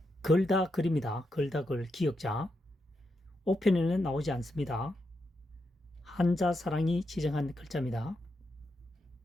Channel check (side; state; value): both; normal; correlation 0.84